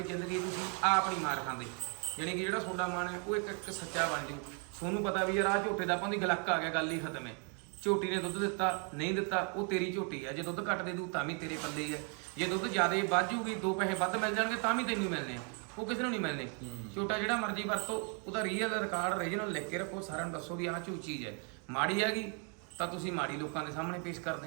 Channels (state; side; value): quieter; left; 39.1 dB